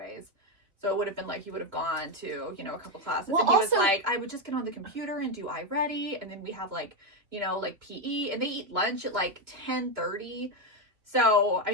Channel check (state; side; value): late; left; 2.9 ms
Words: so it would have been like he would have gone to a couple classes, and he was like, I would just get on the computer and do iReady, and then we have like PE, and they eat lunch at like 10:30. So I